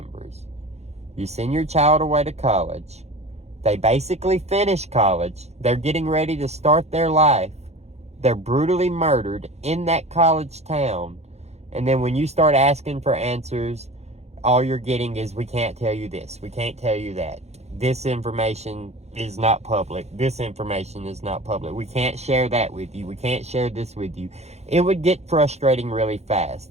You send your child away to college. They basically finish college. They're getting ready to start their life. They're brutally murdered in that college town. And then when you start asking for answers, all you're getting is, we can't tell you this, we can't tell you that. This information is not public. This information is not public. We can't share that with you. We can't share this with you. It would get frustrating really fast.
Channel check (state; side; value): late; left; 0.31 ms